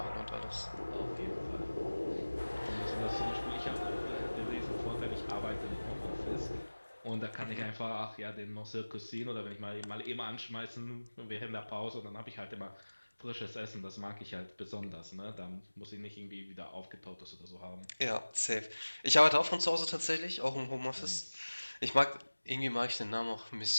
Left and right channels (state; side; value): inverted; both; correlation -1.00